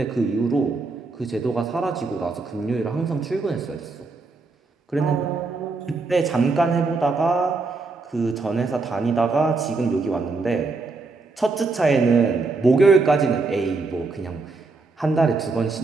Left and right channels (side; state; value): left; quieter; 3.8 dB